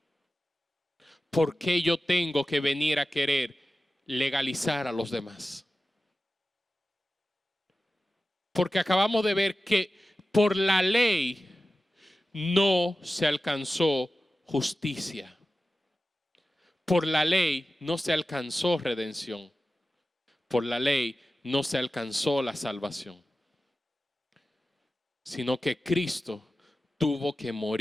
¿Por qué yo tengo que venir a querer legalizar a los demás? Porque acabamos de ver que por la ley no se alcanzó justicia. Por la ley no se alcanzó redención. Por la ley no se alcanzó la salvación. Sino que Cristo tuvo que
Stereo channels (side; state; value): both; normal; correlation 0.94